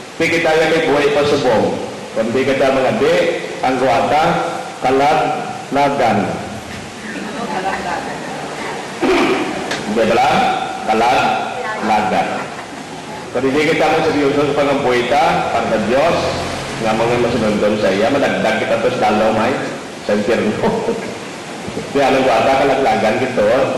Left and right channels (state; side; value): identical; both; correlation 1.00